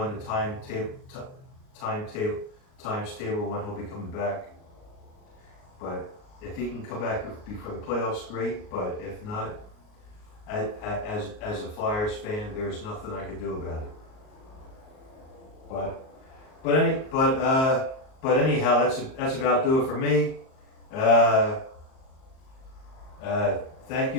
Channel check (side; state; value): right; late; 38 ms